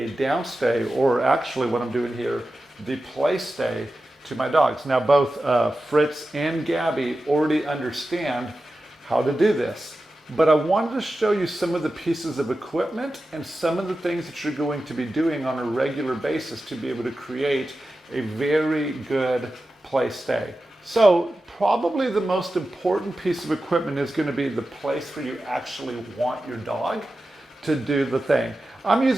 downstay, or actually what I'm doing here, the play stay to my dogs. Now both Fritz and Gabby already understand how to do this, but I wanted to show you some of the pieces of equipment and some of the things that you're going to be doing on a regular basis to be able to create a very good play stay. So probably the most important piece of equipment is going to be the place where you actually want your dog to do the thing. I'm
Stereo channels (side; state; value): both; normal; correlation 0.93